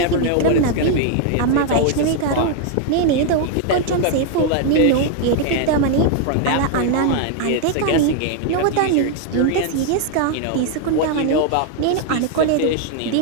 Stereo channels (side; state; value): both; different; correlation 0.00